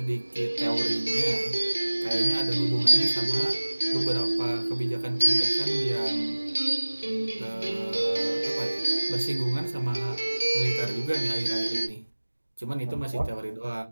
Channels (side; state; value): both; inverted; correlation -1.00